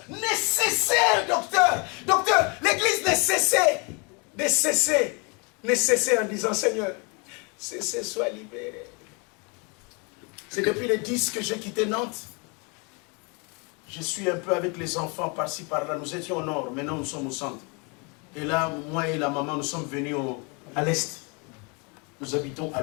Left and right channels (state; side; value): quieter; right; 32.2 dB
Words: nécessaire, docteur. Docteur, l'église nécessaire en disant, Seigneur, cessez, sois libéré. C'est depuis le 10 que j'ai quitté Nantes. Je suis un peu avec les enfants par-ci, par-là. Nous étions au nord, maintenant nous sommes au centre. Et là, moi et la maman, nous sommes venus à l'est. Nous habitons à